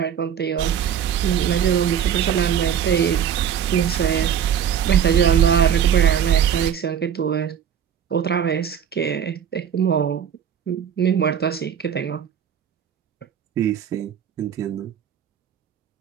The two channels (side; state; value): left; quieter; 8.7 dB